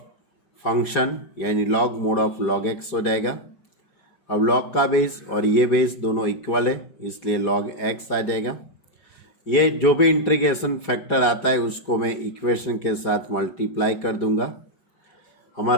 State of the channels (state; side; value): late; right; 4.9 ms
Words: फंक्शन यानी log mode of log x हो जाएगा। अब log का बेस और ये बेस दोनों इक्वल है, इसलिए log x आ जाएगा। ये जो भी इंटीग्रेशन फैक्टर आता है उसको मैं इक्वेशन के साथ मल्टीप्लाई कर दूंगा।